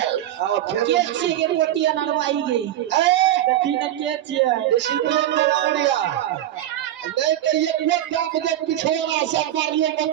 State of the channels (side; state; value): left; quieter; 12.7 dB